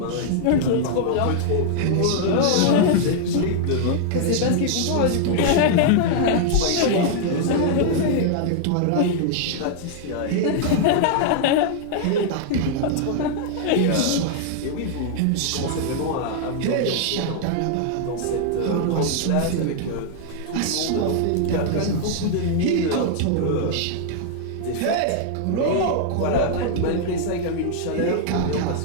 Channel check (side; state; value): both; different; correlation -0.01